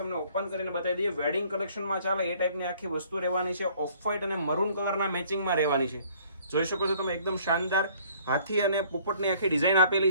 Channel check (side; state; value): both; inverted; correlation -0.58